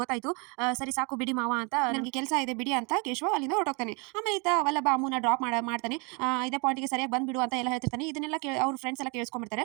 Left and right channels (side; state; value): left; quieter; 31.4 dB